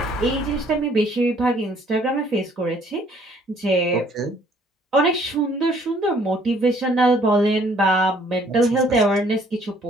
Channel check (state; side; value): normal; both; correlation 0.61